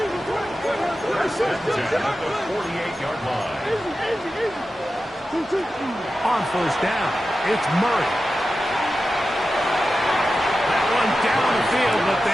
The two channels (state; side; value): normal; both; correlation 0.92